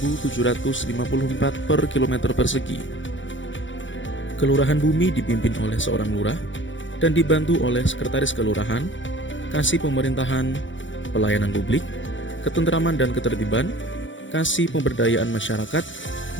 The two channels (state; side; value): late; right; 0.55 ms